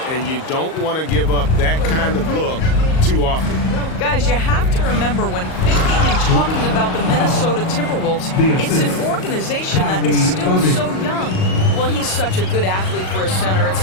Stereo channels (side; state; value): right; late; 38 ms